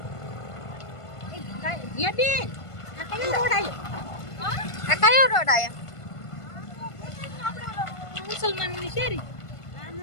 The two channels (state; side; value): late; right; 1.5 ms